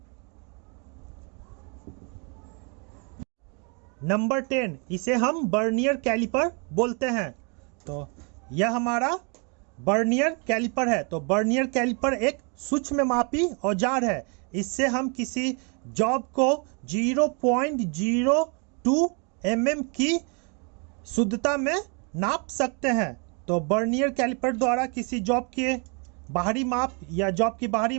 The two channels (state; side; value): quieter; left; 35.4 dB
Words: नंबर 10, इसे हम वर्नियर कैलिपर बोलते हैं। तो यह हमारा वर्नियर कैलिपर है। तो वर्नियर कैलिपर एक सूक्ष्ममापी औजार है। इससे हम किसी जॉब को 0.02 mm की शुद्धता में नाप सकते हैं। तो वर्नियर कैलिपर द्वारा किसी जॉब के बाहरी माप या जॉब की बाहरी